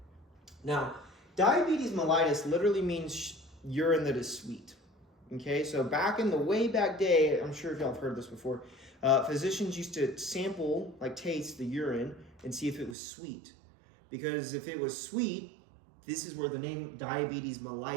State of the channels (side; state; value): left; drops out; at 13.0 s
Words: Now, diabetes mellitus literally means urine that is sweet. Okay? So way back day, I'm sure if y'all have heard this before, physicians used to sample, taste the urine and see if it was sweet. Because if it was sweet, this is where the name diabetes